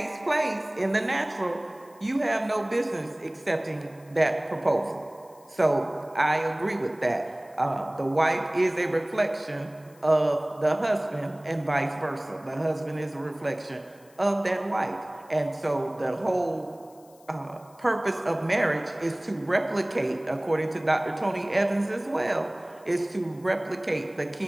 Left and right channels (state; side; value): noise; left; hiss, 28 dB below the sound